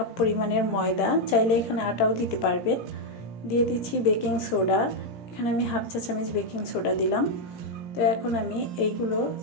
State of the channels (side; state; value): right; late; 17 ms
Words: পরিমাণের ময়দা, চাইলে এখানে আটাও দিতে পারবেন। দিয়ে দিচ্ছি বেকিং সোডা, এখানে আমি 1/2 চা চামচ বেকিং সোডা দিলাম। তো এখন আমি এইগুলো